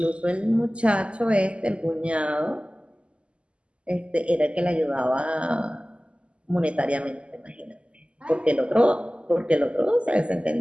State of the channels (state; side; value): late; left; 0.055 ms